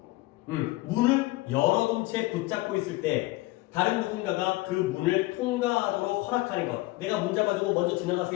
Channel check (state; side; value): quieter; right; 20.0 dB